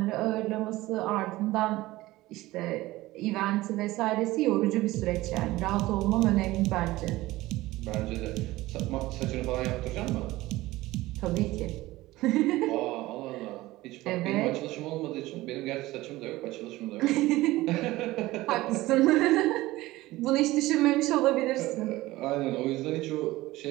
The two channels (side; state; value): left; quieter; 18.2 dB